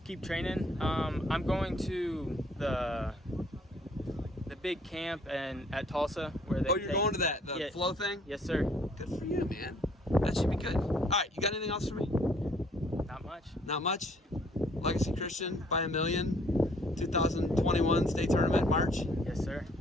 keep training. I'm going to the big camp at Tulsa where they. Oh, you're going to the flow thing? Yes, sir. Good for you, man. That should be good. All right. You got anything else for me? Not much. Not much. Legacy Christian by a million. 2021 state tournament March. Yes, sir.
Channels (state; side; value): normal; both; correlation 0.61